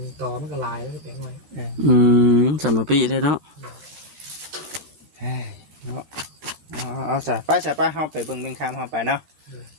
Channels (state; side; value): late; left; 13 ms